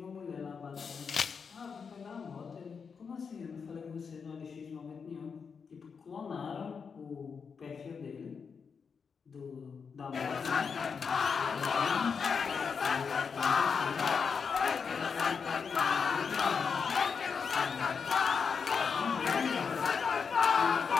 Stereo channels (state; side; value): quieter; right; 5.9 dB